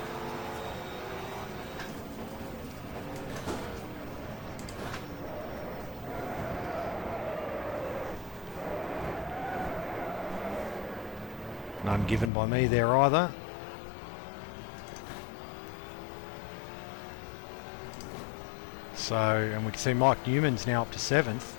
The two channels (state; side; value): drops out; right; at 12.3 s